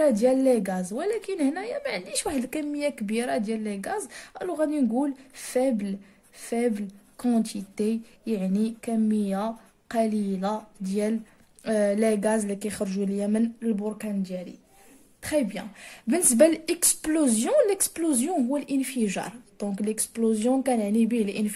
ديال لي غاز. ولكن هنايا ما عنديش واحد الكميه كبيره ديال لي غاز، الو غادي نقول فيبل كونتيتي، يعني كميه قليله ديال لي غاز اللي كيخرجوا ليا من البركان ديالي. تري بيان. بالنسبه للاكسبلوزيون هو الانفجار. دونك ليكسبلوزيون كنعني به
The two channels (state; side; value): identical; both; correlation 1.00